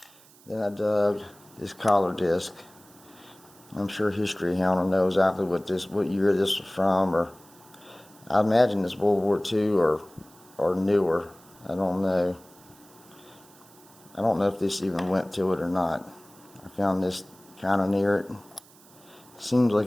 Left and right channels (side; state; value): right; noise; hiss, 26 dB below the sound